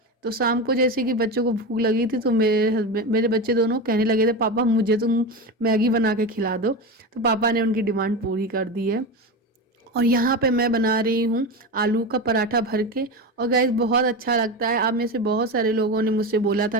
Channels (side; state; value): both; normal; correlation 0.21